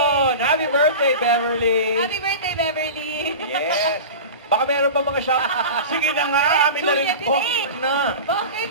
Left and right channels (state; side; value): inverted; both; correlation -0.32